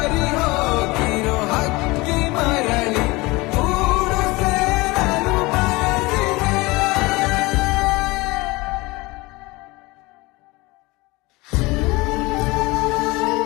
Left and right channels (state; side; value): quieter; right; 22.9 dB